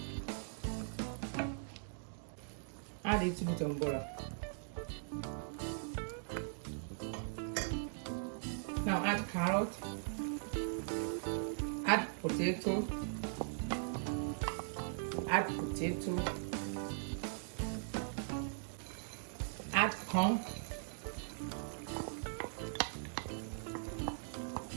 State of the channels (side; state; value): left; silent; digital silence